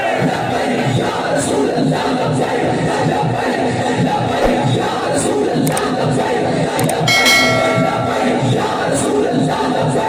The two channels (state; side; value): identical; both; correlation 1.00